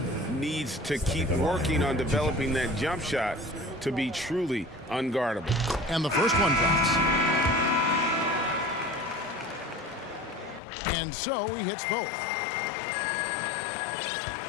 needs to keep working on developing that jump shot to be truly unguardable. And the first one drops. And so he hits both.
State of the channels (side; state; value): right; drops out; at 10.6 s